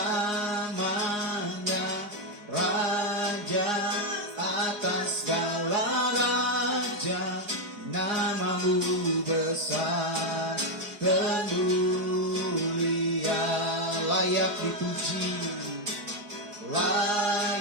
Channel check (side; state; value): left; late; 4.8 ms